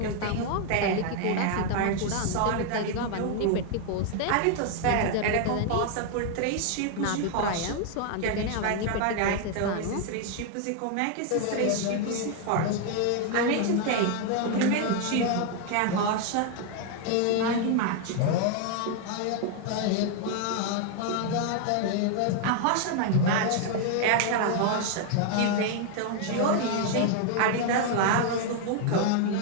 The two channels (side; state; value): both; different; correlation 0.00